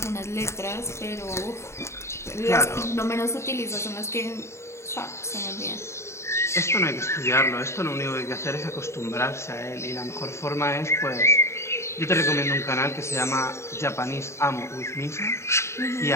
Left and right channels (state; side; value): late; right; 0.13 ms